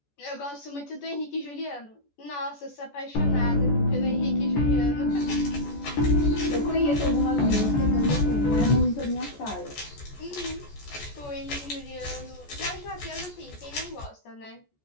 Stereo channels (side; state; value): right; late; 14 ms